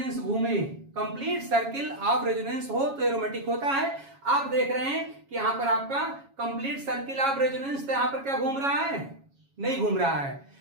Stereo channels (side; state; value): left; late; 7.3 ms